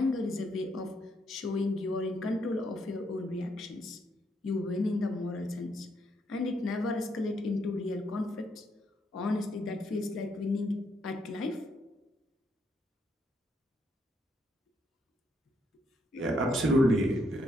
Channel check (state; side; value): normal; both; correlation 0.75